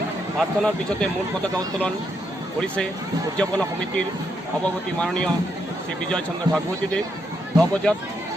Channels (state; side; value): normal; both; correlation 0.79